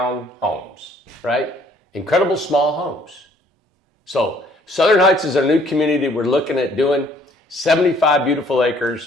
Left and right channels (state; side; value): normal; both; correlation 0.61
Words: homes, right? Incredible small homes. So Southern Heights is our new community. We're looking at doing 75 beautiful